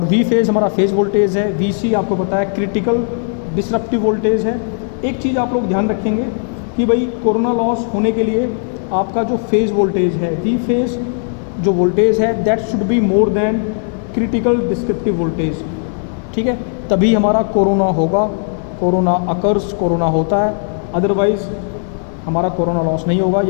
V फेज हमारा फेज वोल्टेज है। VC आपको पता है क्रिटिकल डिसरप्टिव वोल्टेज है। एक चीज़ आप लोग ध्यान रखेंगे कि भाई कोरोना लॉस होने के लिए आपका जो फेज वोल्टेज है, V फेज जो वोल्टेज है, that should be more than critical descriptive voltage, ठीक है। तभी हमारा कोरोना होगा, कोरोना अकर्स, कोरोना होता है। अदरवाइज़ हमारा कोरोना लॉस नहीं होगा।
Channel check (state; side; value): silent; right; 60 dB below the other